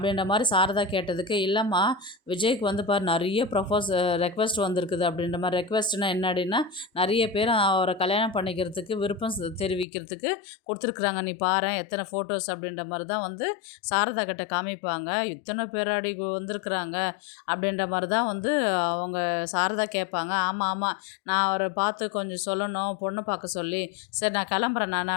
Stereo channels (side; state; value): right; drops out; at 9.9 s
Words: மாரி சாரதா கேட்டதுக்கு, "இல்லைம்மா, விஜய்க்கு வந்து பாரு நெறைய ரெக்வெஸ்ட் வந்திருக்குது." அப்படின்ற மாரி. ரெக்வெஸ்ட்னா என்னடின்னா, நெறைய பேர் அவர கல்யாணம் பண்ணிக்கிறதுக்கு விருப்பம் தெரிவிக்கிறதுக்கு குடுத்துருக்குறாங்க. நீ பாரேன் எத்தனை ஃபோட்டோஸ் அப்படின்ற மாரி தான் வந்து சாரதா கிட்ட காமிப்பாங்க. "இத்தனை பேராடி வந்திருக்குறாங்க?" அப்படின்ற மாரி தான் வந்து அவங்க சாரதா கேட்பாங்க. "ஆமா, ஆமா. நான் அவர பார்த்து கொஞ்சம் சொல்லணும், பொண்ணு பார்க்க சொல்லி. சரி நான் கிளம்புறேன் நான்."